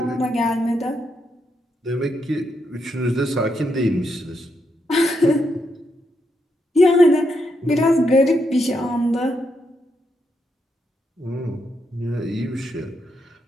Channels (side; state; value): both; normal; correlation 0.81